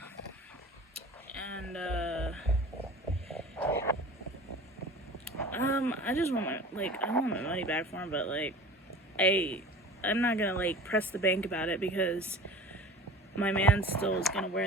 And, I just want I want my money back for them, but, like, I'm not gonna, like, press the bank about it because my man still is gonna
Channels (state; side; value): normal; both; correlation 0.39